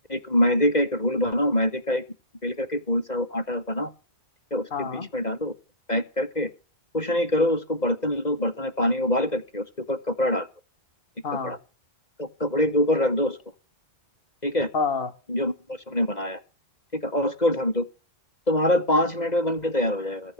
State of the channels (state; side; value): late; right; 2.0 ms